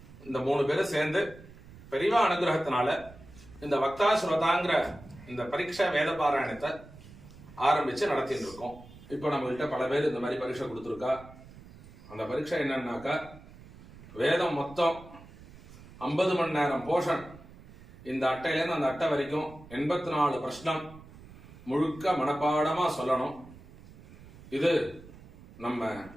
இந்த 3 பேரும் சேர்ந்து பெரியவா அனுகிரகத்தினால இந்த வக்தா ஸ்ரோதாங்கிற இந்த பரீட்சை வேத பாராயணத்தை ஆரம்பிச்சு நடத்திட்டு இருக்கோம். இப்போ நம்மகிட்ட பல பேர் இந்த மாதிரி பரீட்சை கொடுத்துருக்கா. அந்த பரீட்சை என்னன்னாக்கா வேதம் மொத்தம் 50 மணி நேரம் போஷன். இந்த அட்டையிலேருந்து அந்த அட்டை வரைக்கும் 84 பிரஷ்னம் முழுக்க மனப்பாடமா சொல்லணும். இது நம்ம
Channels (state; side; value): noise; right; rumble, 20 dB below the sound